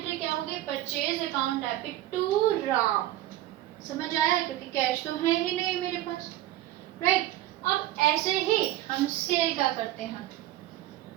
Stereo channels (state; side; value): quieter; left; 14.8 dB